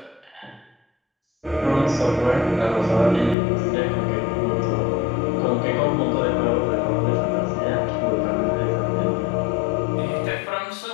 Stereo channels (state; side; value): drops out; right; at 3.4 s